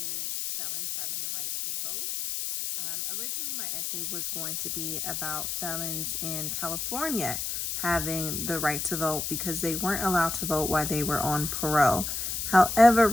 Felons Having the Right to Vote. Originally, my essay was going to be about felons in California having the right to vote because they weren't allowed to vote while they were on parole. However,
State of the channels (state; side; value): noise; left; hiss, 3 dB below the sound